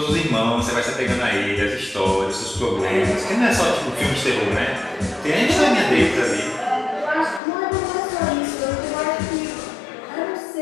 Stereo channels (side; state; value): right; drops out; at 7.4 s